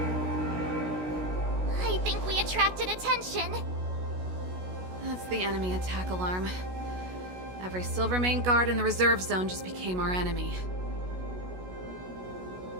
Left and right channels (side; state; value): left; late; 16 ms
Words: I think we attracted attention. That's the enemy attack alarm. Every Silvermane guard in the reserve zone just became our enemy.